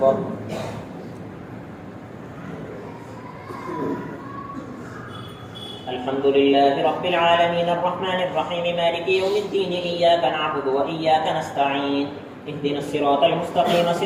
अल्हम्दुलिल्लाहि रब्बिल आलमीन अर्रहमानिर रहीम मालिकि यौमिद्दीन इय्याका नअबुदु व इय्याका नस्तईन इहदिनस सिरातल मुस्तक़ीम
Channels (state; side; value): identical; both; correlation 1.00